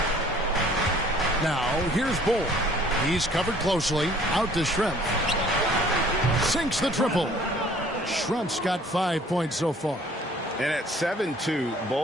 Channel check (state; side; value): normal; both; correlation 0.55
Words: Now here's Bull. He's covered closely. Out to Schrempf. Sinks the triple. Schrempf's got 5 points so far. And at 7-2,